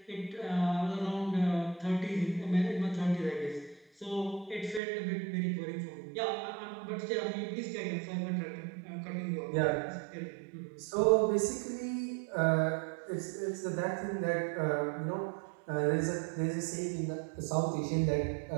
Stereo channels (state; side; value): drops out; left; at 4.8 s